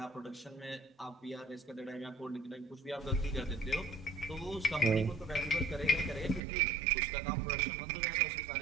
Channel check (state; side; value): drops out; left; at 6.4 s